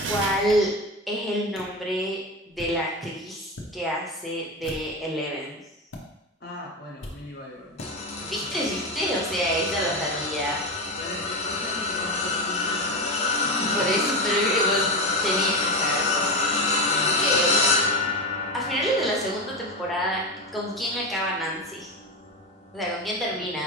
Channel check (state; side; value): normal; both; correlation 0.17